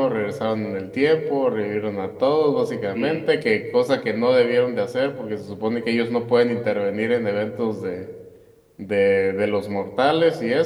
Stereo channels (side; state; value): both; identical; correlation 1.00